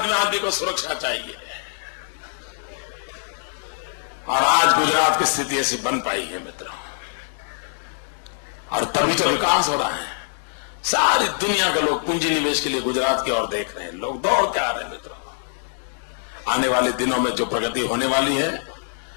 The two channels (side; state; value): right; silent; digital silence